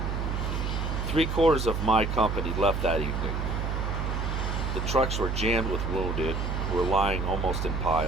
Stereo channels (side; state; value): right; noise; hum, 1 dB below the sound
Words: 3/4 of my company left that evening. The trucks were jammed with wounded, who were lying almost in